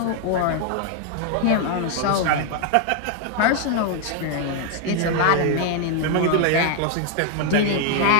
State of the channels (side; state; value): both; different; correlation 0.00